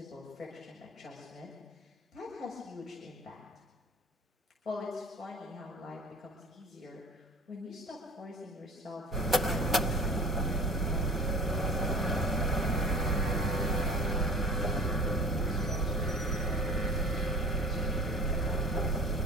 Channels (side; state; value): both; normal; correlation 0.43